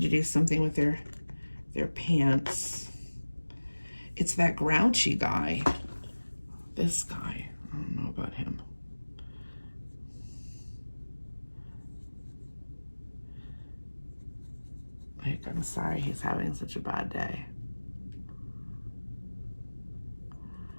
to do something with their pants. It's that grouchy guy. This guy. I don't know about him. Like, I'm sorry he's having such a bad day.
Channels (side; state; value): both; inverted; correlation -1.00